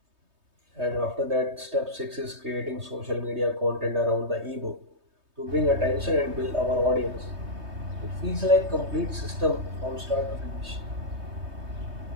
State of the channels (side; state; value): left; late; 3.2 ms